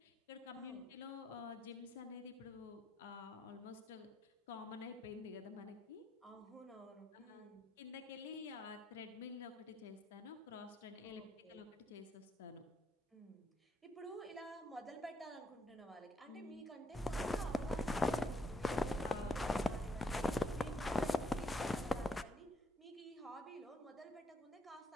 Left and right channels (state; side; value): normal; both; correlation 0.74